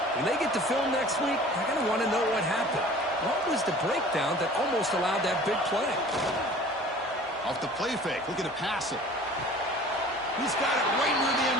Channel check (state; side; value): normal; both; correlation 0.46